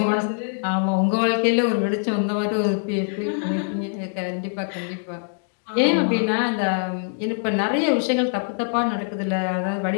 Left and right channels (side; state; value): right; silent; 63 dB below the other